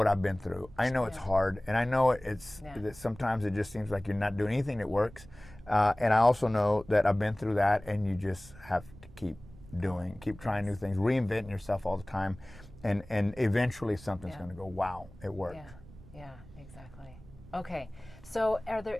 I've been through. I know it's hard, and I know that sometimes it just seems like you're not doing anything that works. And I also know that I've been through that, and you just have to keep trying new things, reinventing yourself all the time, and eventually something's going to go, wow, it worked. Yeah, exactly. Okay, so are there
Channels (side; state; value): right; noise; rumble, 20 dB below the sound